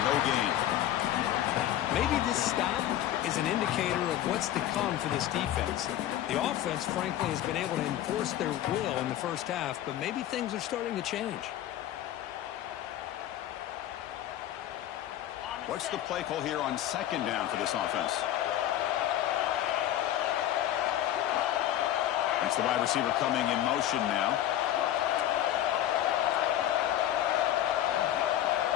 no gain. Maybe this stop is an indicator of what's to come for this defense. The offense, frankly, has been able to enforce their will in the 1st half, but maybe things are starting to change. What's the play call here on 2nd down for this offense? That's the wide receiver coming in motion now.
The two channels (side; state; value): right; quieter; 12.4 dB